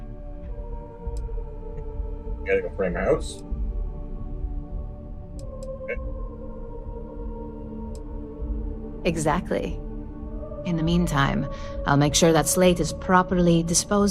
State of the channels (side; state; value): both; identical; correlation 1.00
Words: Gotta go frame my house. Okay. Exactly. In the meantime, I'll make sure that slate is properly